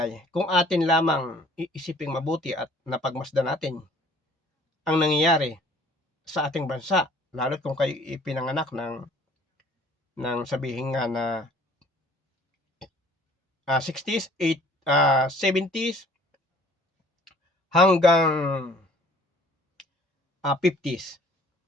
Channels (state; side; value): normal; both; correlation 0.55